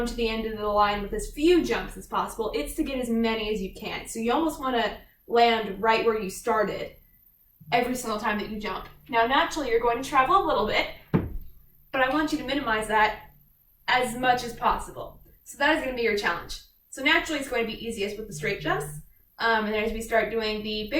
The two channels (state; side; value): identical; both; correlation 1.00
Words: to the end of the line with as few jumps as possible. It's to get as many as you can. So you almost want to land right where you started every single time that you jump. Now, naturally, you're going to travel a little bit, but I want you to minimize that as much as possible. So that is going to be your challenge. So naturally, it's going to be easiest with the straight jumps. And then as we start doing the